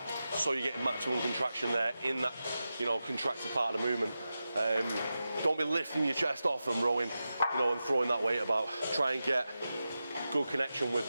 so you get maximum contraction there in that, you know, contracted part of the movement. Don't be lifting your chest off and rowing, you know, and throwing that weight about. Try and get good connection with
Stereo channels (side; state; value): both; inverted; correlation -0.92